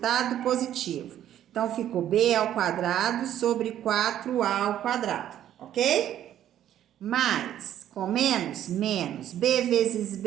positivo. Então, ficou b ao quadrado sobre 4a ao quadrado, ok? Mais, com menos, menos, b vezes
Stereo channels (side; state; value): left; quieter; 11.4 dB